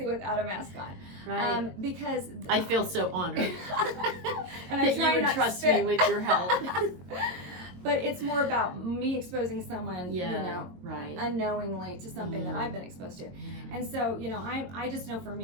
without a mask on. Right. Because I feel so honored and that you would trust me with your help. But it's more about me exposing someone, right. unknowingly to something that I've been exposed to. And so, I just know for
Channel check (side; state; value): left; late; 22 ms